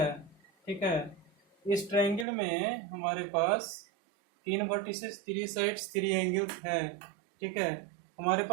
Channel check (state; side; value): drops out; left; at 2.2 s